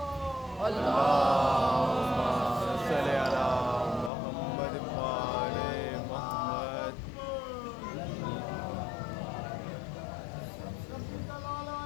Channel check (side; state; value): right; drops out; at 4.1 s